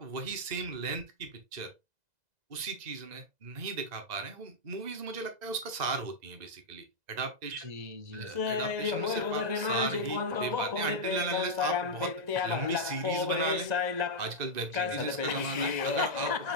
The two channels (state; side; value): late; left; 2.0 ms